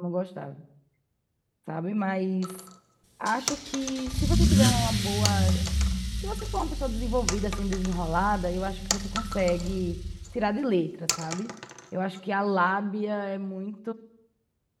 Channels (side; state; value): both; identical; correlation 1.00